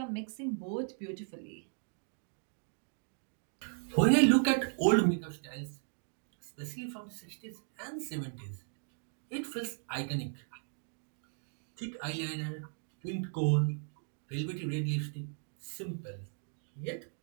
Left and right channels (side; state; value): left; silent; 54 dB below the other